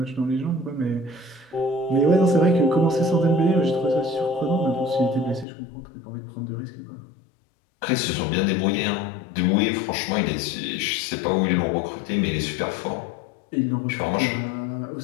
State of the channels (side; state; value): right; drops out; at 5.5 s